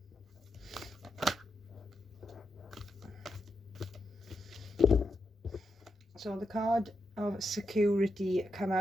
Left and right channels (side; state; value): both; normal; correlation 0.85